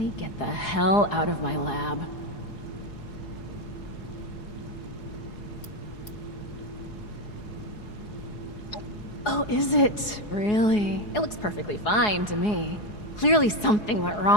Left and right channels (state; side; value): late; right; 4.8 ms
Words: get the hell out of my lab? Oh, is it? Really? It looks perfectly fine to me. Clearly something went